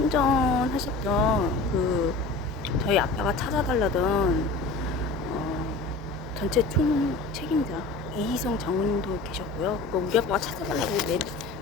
저희 아빠가 찾아달라던 전체 총 책임자 이희성 장군님도 계셨고요. 우리 아빠가 찾아달라고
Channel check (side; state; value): right; quieter; 3.4 dB